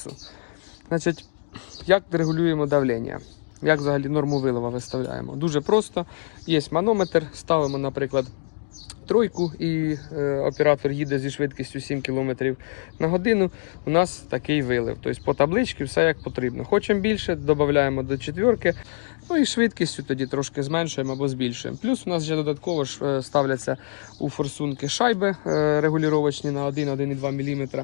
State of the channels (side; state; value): right; silent; digital silence